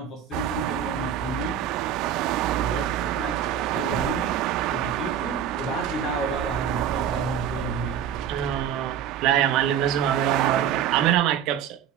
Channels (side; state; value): left; quieter; 9.2 dB